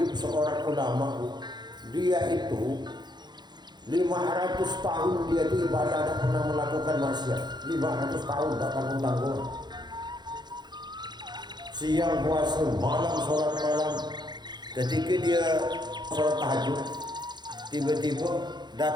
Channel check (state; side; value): late; left; 0.21 ms